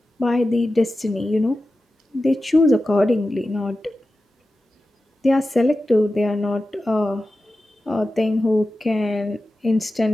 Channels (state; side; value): normal; both; correlation 0.93